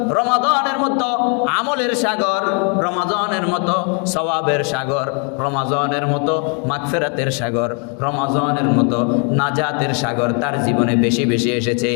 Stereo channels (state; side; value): quieter; right; 37.6 dB